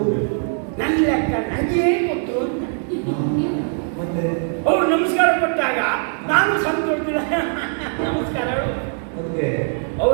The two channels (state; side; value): silent; left; 56 dB below the other